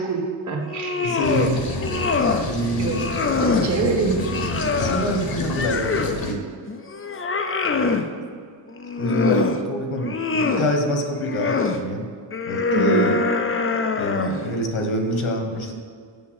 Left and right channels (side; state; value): both; normal; correlation 0.12